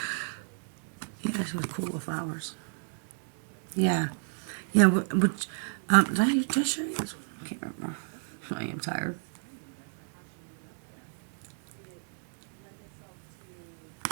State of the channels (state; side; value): silent; left; digital silence